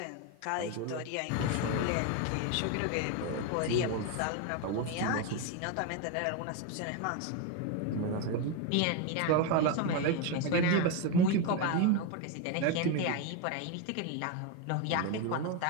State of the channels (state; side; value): different; both; correlation 0.02